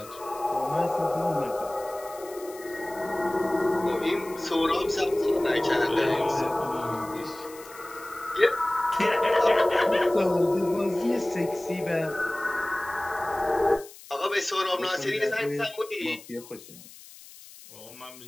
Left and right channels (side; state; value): left; noise; hiss, 19 dB below the sound